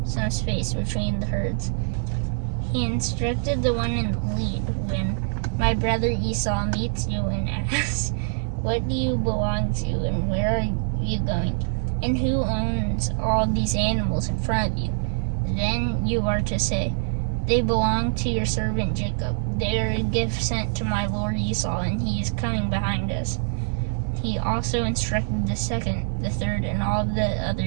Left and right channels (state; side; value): silent; left; 62 dB below the other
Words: some space between the herds. He instructed the one in the lead, "When my brother Esau meets you and asks, 'What do you belong to, and where are you going, and who owns all these animals in front of you?' then you are to say, 'They belong to your servant Jacob. They are a gift sent to my lord Esau, and he is coming behind us.'" He also instructed the second, the third, and all of the